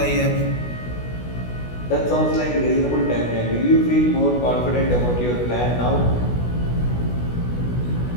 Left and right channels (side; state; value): right; late; 16 ms